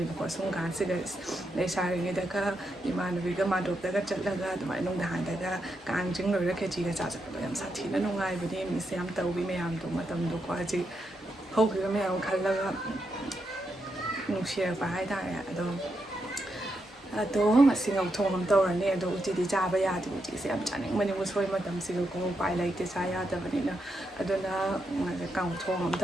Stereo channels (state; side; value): normal; both; correlation 0.83